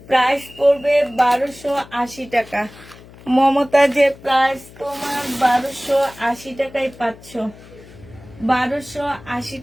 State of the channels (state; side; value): noise; left; hum, 21 dB below the sound